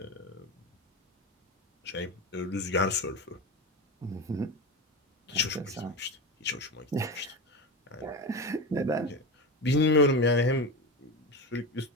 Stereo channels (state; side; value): normal; both; correlation 0.21